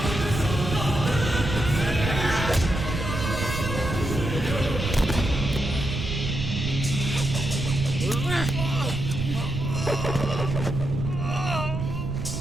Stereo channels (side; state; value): right; noise; rumble, 4 dB below the sound